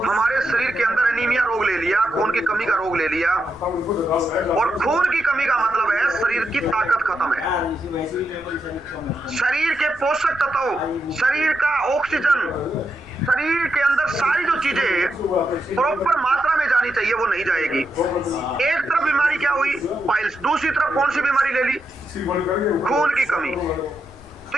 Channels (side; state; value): left; noise; rumble, 24 dB below the sound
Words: हमारे शरीर के अंदर एनीमिया रोग ले लिया, खून की कमी का रोग ले लिया, और खून की कमी का मतलब है शरीर की ताकत खत्म है, शरीर के पोषक तत्व, शरीर का ऑक्सीजन, शरीर के अंदर सारी जो चीजें प्रॉपर मात्रा में जानी चाहिए वो नहीं जाएगी। एक तरफ बीमारी क्या हुई, पाइल्स, दूसरी तरफ कौन सी बीमारी ले ली, खून की कमी। तो